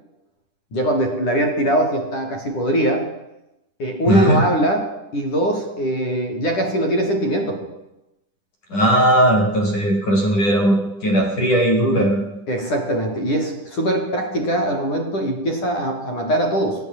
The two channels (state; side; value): late; right; 10 ms